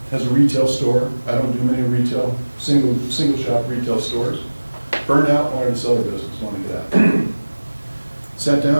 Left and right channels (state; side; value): inverted; both; correlation -1.00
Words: has a retail store. I don't do many retail, single shop retail stores. Burned out, wanted to sell her business, wanted to get out. Sat